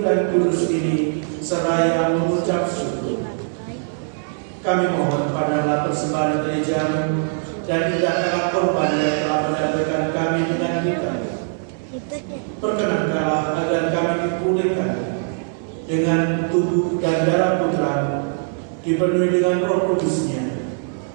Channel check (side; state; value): left; silent; digital silence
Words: dan kudus ini seraya mengucap syukur. Kami mohon padalah persembahan gerejamu dan tidaklah korban yang telah mendamaikan kami dengan kita. Perkenankanlah agar kami dipulihkan dengan tubuh dan darah Putra-Mu, dipenuhi dengan Roh Kudus-Nya,